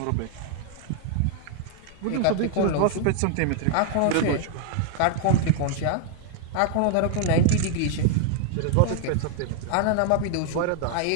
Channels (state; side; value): different; both; correlation 0.00